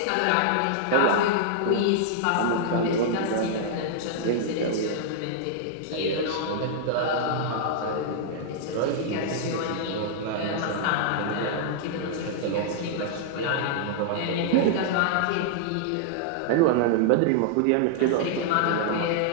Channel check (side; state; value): both; different; correlation -0.01